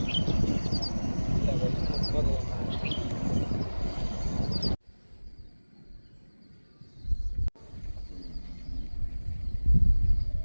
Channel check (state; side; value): inverted; both; correlation -1.00